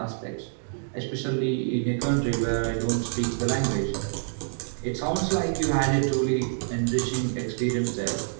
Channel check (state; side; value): silent; left; digital silence